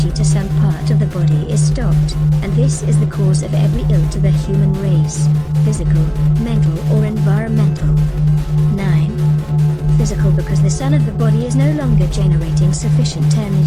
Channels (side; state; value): both; identical; correlation 1.00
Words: to some part of the body is stopped, and this is the cause of every ill to the human race, physical, mental or environmental. 9. Physical, because the sun of the body is no longer generating sufficient